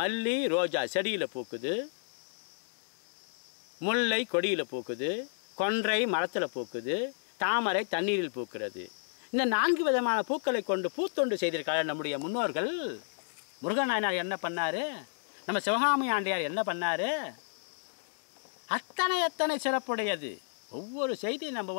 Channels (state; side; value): silent; right; digital silence